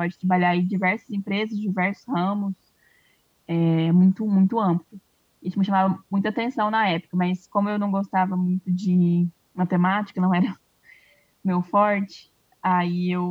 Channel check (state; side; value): identical; both; correlation 1.00